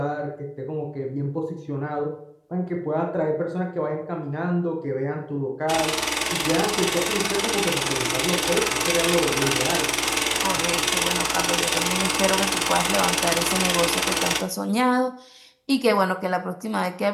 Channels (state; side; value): identical; both; correlation 1.00